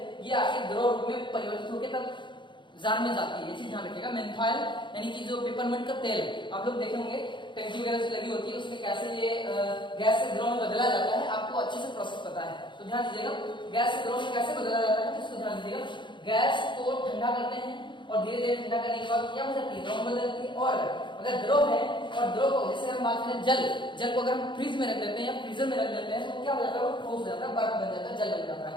ये आके द्रव रूप में परिवर्तित होकर तब जार में जाती है। ये चीज ध्यान रखिएगा। मेन्थॉल यानी कि जो पेपरमिंट का तेल है, आप लोग देखे होंगे टंकी वगैरह से लगी होती है, उसमें कैसे ये गैस से द्रव में बदला जाता है, आपको अच्छे से प्रोसेस पता है। तो ध्यान दीजिएगा, गैस से द्रव में कैसे बदला जाता है, इसको ध्यान दीजिएगा। गैस को ठंडा करते हैं, और धीरे धीरे ठंडा करने के बाद क्या हो जाती है? द्रव में बदलती है। और अगर द्रव है, और द्रव को जैसे हम बात करें जल को अगर हम फ्रिज में रख देते हैं या फ्रीजर में रख देते हैं, तो क्या हो जाता है? वो ठोस हो जाता है, बर्फ बन जाता है, जल बन जाता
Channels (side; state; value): right; late; 0.23 ms